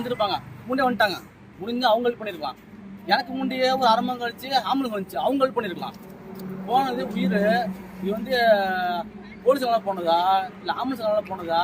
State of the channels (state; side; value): identical; both; correlation 1.00